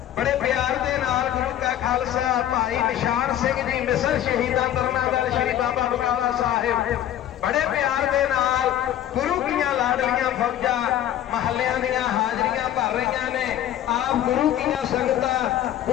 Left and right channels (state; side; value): quieter; right; 11.6 dB